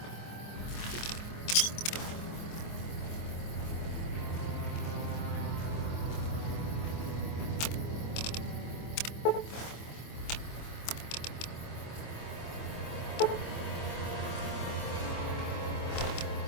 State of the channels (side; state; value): right; late; 26 ms